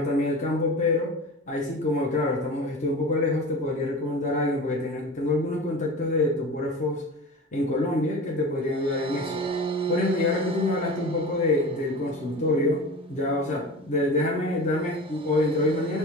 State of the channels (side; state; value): both; normal; correlation 0.34